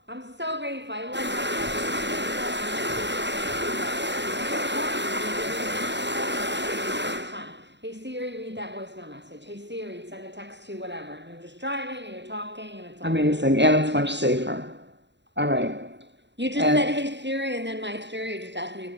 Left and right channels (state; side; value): late; left; 0.52 ms